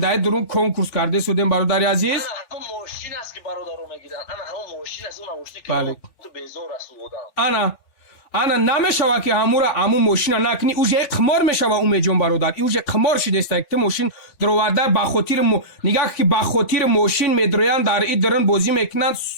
درون کنکورس کرده سودین برادر عزیز انا همون ماشین است که برادرو میگیرن انا همون ماشین است اون ماشین که تو بیزار است بودم انا نمیشوه که همون ماشین نکنی اوجه قمار میشوه اومه جون برادر اوجه قمار شده است که ماشین دروارده با خاطر نگاه که با خاطر ماشین میدرویان در این درن بازی میکنن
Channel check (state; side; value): late; right; 3.5 ms